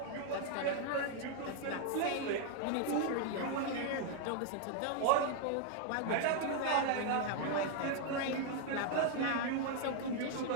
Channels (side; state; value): both; different; correlation 0.00